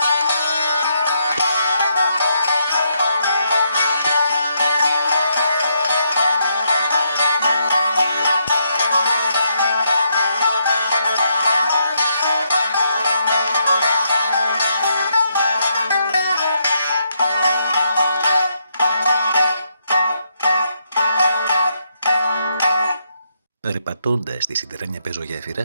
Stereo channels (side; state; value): both; inverted; correlation -0.77